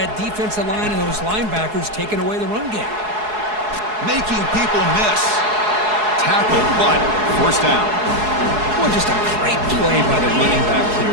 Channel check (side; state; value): left; late; 4.7 ms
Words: that defensive line and those linebackers taking away the run game. Making people miss. Tackle, but first down. Well, just a great play by the running back here.